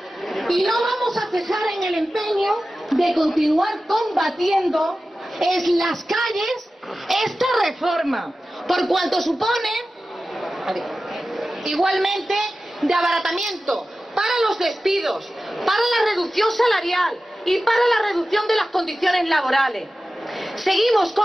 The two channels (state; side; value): normal; both; correlation 0.95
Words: y no vamos a cejar en el empeño de continuar combatiendo en las calles esta reforma, por cuanto supone igualmente de abaratamiento para los despidos, para la reducción salarial y para la reducción de las condiciones laborales. Seguimos